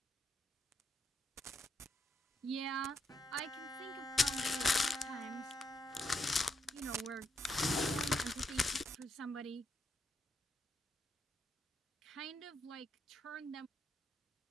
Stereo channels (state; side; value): normal; both; correlation 0.79